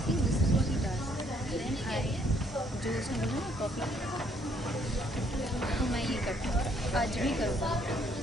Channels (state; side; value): normal; both; correlation 0.67